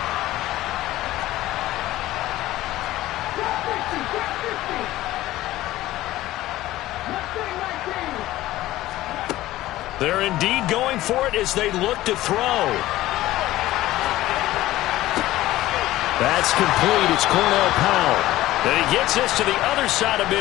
They're indeed going for it as they look to throw. That's complete. It's Cornell Powell. And he gets this to the other side of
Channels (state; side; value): quieter; right; 15.9 dB